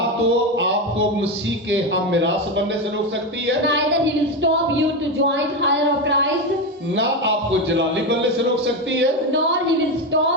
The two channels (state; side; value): normal; both; correlation 0.14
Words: तो आपको मसीह के हम मिरास बनने से रोक सकती है, neither he will stop you to join higher of Christ, ना आपको जलाली बनने से रोक सकती है। nor he will